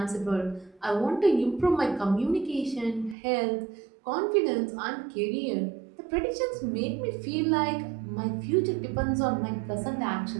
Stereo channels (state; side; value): drops out; left; at 3.2 s